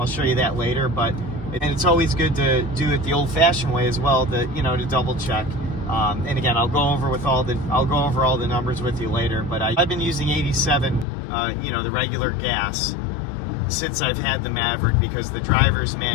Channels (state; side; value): drops out; right; at 11.1 s